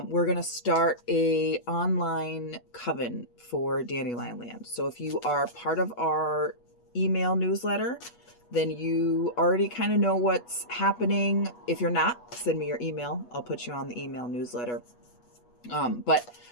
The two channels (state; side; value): late; right; 8.3 ms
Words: we're going to start a online coven for Dandelion Land. So if you are part of our email newsletter, then you already kind of know what's happening. If you're not, send me your email. I'll put you on the email newsletter. But